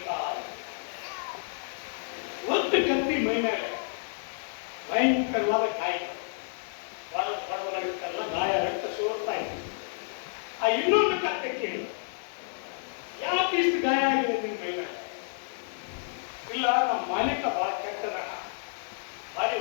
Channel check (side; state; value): right; silent; 58 dB below the other